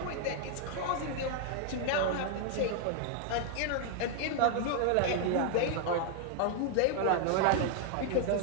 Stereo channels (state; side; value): different; both; correlation 0.00